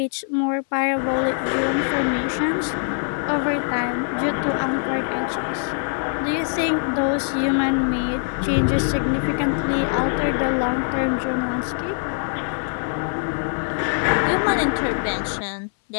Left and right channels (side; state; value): right; silent; 64 dB below the other